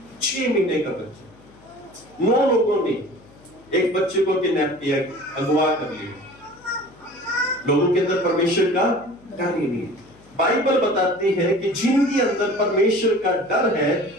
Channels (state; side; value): noise; left; hum, 26 dB below the sound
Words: 6 महीने का बच्चा, 9 लोगों ने एक बच्चे को किडनैप किया, अगवा कर लिया। लोगों के अंदर परमेश्वर का डर ही नहीं है। बाइबल बताती है कि जिनके अंदर परमेश्वर का डर है,